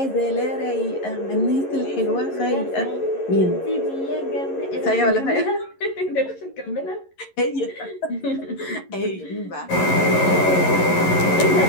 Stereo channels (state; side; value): late; right; 11 ms